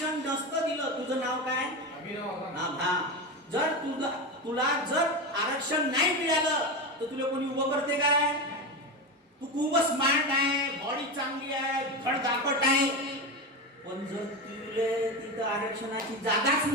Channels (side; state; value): both; normal; correlation 0.19